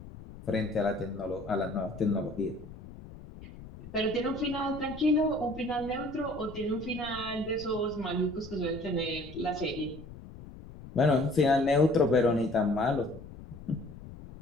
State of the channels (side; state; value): left; noise; rumble, 15 dB below the sound